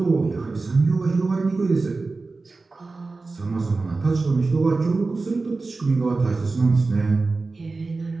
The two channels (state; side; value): quieter; left; 3.7 dB